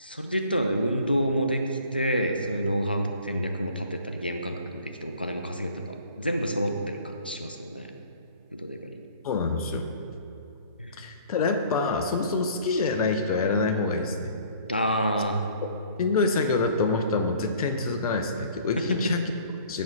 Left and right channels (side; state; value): both; inverted; correlation -0.52